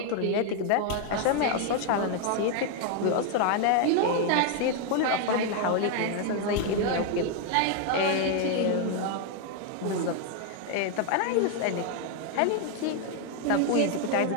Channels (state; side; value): different; both; correlation 0.00